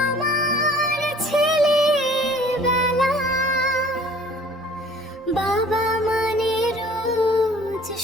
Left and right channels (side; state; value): both; normal; correlation 0.51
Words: ছেলেবেলা। বাবা মানে রোজ